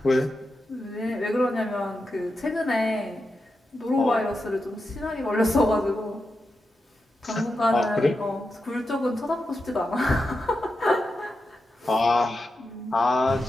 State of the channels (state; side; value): normal; both; correlation 0.89